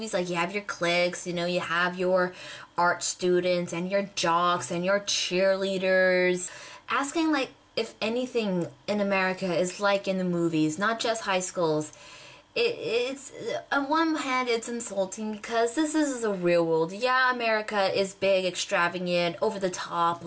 like you have your cliques, you know, you have your art students and your jocks and your cheerleaders. Asking like if anything in America is like in the movies, not just high schools, it's on one hand it's insulting because this is the real world. Yeah, America is big, extravagant, over the top,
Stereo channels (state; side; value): identical; both; correlation 1.00